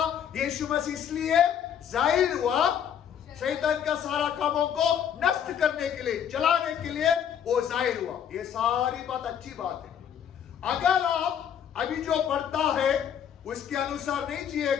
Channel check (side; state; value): right; quieter; 8.8 dB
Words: यीशु मसीह इसलिए जाहिर हुआ शैतान का सारा कामों को नष्ट करने के लिए, जलाने के लिए वो जाहिर हुआ। ये सारी बात अच्छी बात है। अगर आप अभी जो पढ़ता है उसके अनुसार नहीं